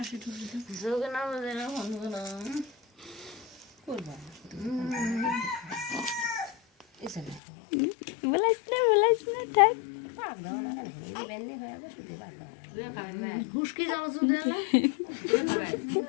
টুসি দাও। যোগনা বাজে না বন্ধু না করবা বলাইস না থাক। হুসকি যাওয়া যদি না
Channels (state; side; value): drops out; right; at 7.4 s